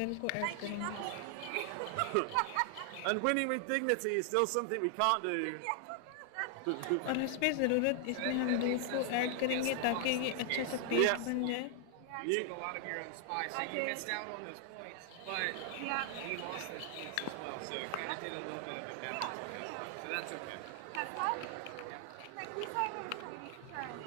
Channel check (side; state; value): both; different; correlation 0.00